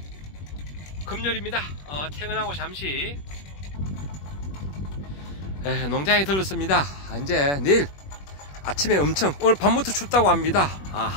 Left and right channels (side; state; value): right; late; 21 ms